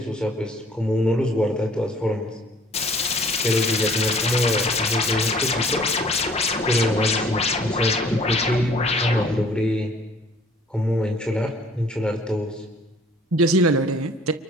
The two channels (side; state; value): both; normal; correlation 0.54